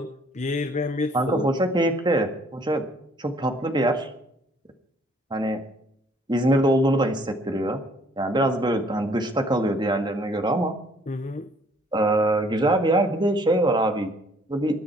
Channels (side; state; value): both; normal; correlation 0.61